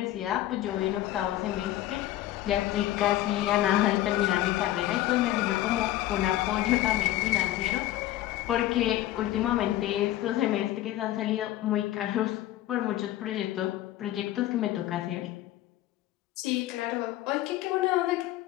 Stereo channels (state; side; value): quieter; right; 14.5 dB